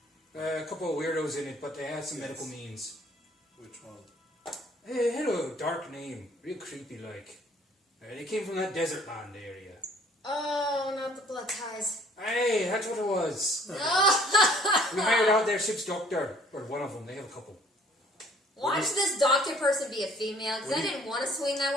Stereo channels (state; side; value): normal; both; correlation 0.57